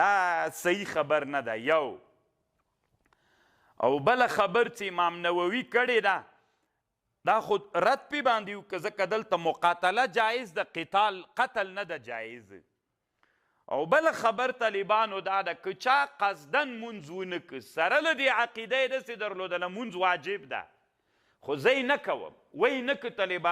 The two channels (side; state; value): both; identical; correlation 1.00